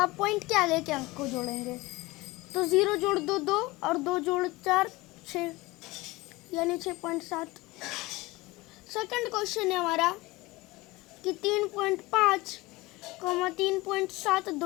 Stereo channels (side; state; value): right; quieter; 21.2 dB